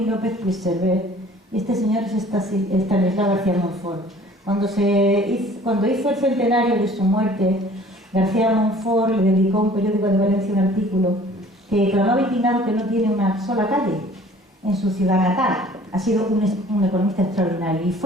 López Puigcerver y este señor es Estanislao García Montfort. Cuando hizo el centenario de su muerte, García Montfort le dedicó a un periódico de Valencia un artículo que clamaba indignado que no tiene una sola calle en su ciudad natal. Ha sido un economista extraordinario y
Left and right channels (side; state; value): both; normal; correlation 0.51